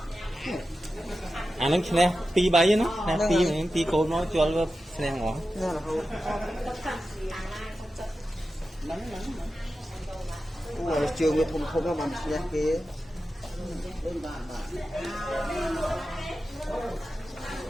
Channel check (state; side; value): normal; both; correlation 0.92